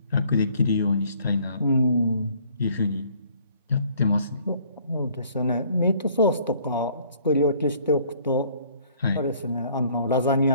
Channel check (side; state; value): both; inverted; correlation -0.59